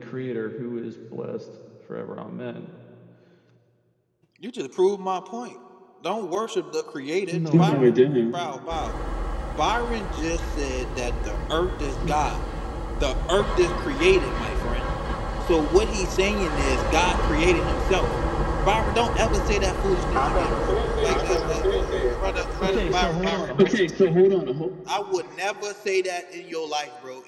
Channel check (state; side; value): identical; both; correlation 1.00